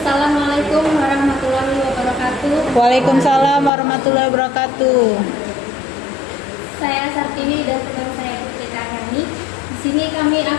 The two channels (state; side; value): drops out; right; at 3.7 s